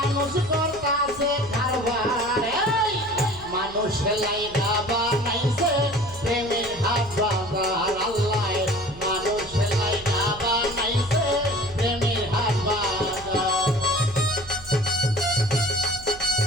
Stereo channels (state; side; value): noise; right; hum, 19 dB below the sound